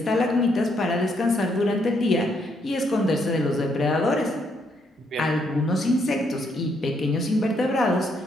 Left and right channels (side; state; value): both; normal; correlation 0.74